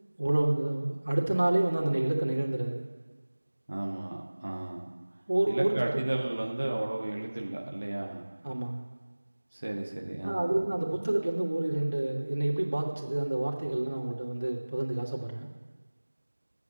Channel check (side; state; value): both; inverted; correlation -1.00